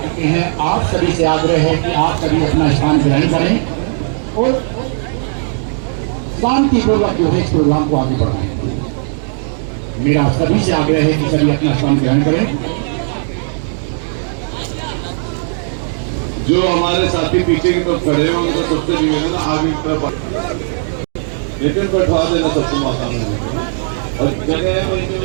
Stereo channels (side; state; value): left; silent; digital silence